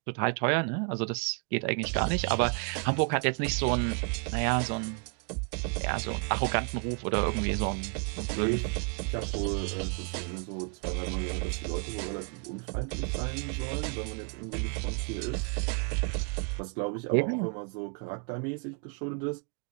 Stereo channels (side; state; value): left; quieter; 36.7 dB